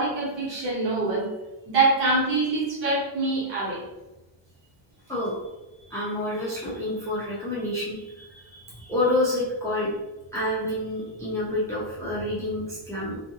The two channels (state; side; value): normal; both; correlation -0.09